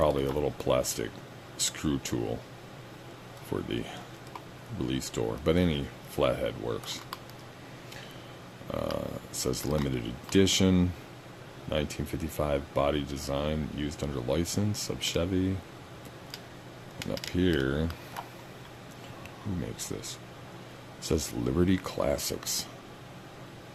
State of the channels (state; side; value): identical; both; correlation 1.00